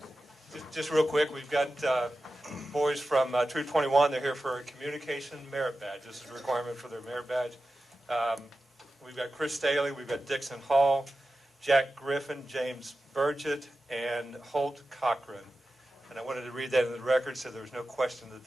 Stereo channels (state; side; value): normal; both; correlation 0.93